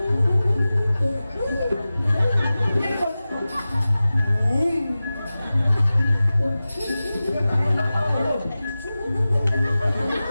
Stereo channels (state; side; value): inverted; both; correlation -0.96